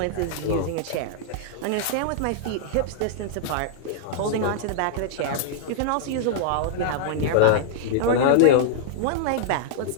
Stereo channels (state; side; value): different; both; correlation -0.01